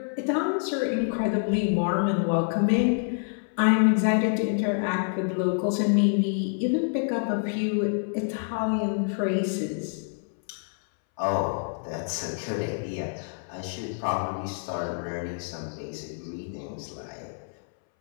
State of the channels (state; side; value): silent; right; 60 dB below the other